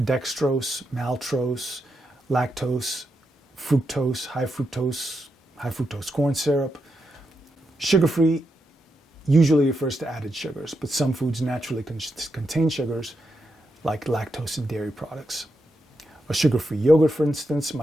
dextrose, maltose, lactose, fructose, high fructose corn syrup. Sugar-free usually refers to added sugars, but some foods naturally contain sugars, like lactose in dairy products. A sugar-free yogurt, for instance,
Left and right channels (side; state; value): both; normal; correlation 0.84